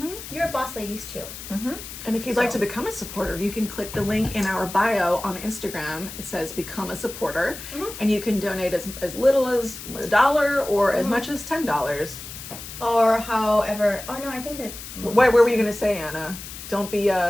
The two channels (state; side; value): noise; left; hiss, 12 dB below the sound